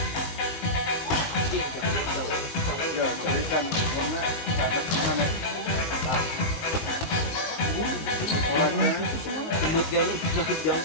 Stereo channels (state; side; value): late; right; 19 ms